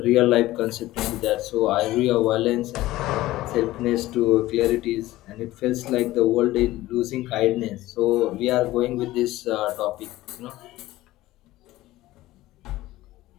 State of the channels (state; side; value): quieter; right; 16.8 dB